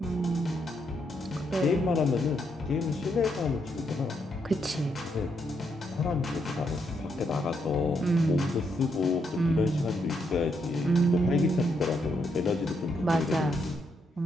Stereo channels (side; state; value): both; normal; correlation 0.78